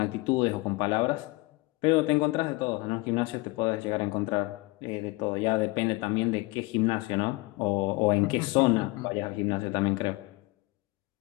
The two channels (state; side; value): quieter; right; 23.0 dB